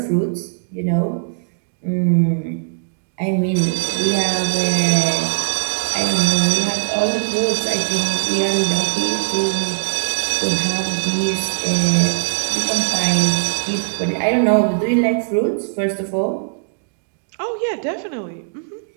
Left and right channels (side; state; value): left; silent; digital silence